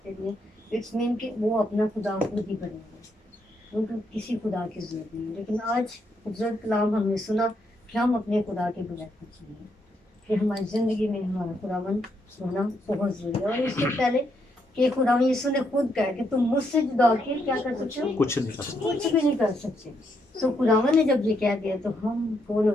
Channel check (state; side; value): normal; both; correlation 0.77